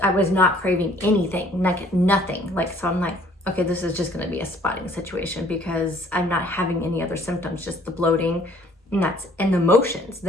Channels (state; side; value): normal; both; correlation 0.58